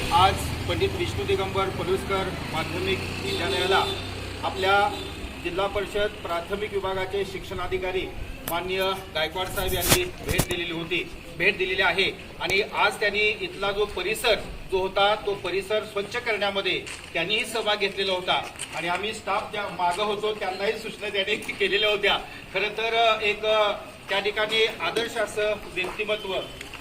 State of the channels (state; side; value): identical; both; correlation 1.00